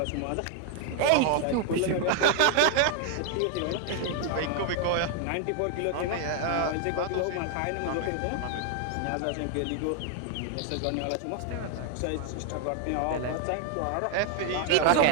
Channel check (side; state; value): both; different; correlation 0.00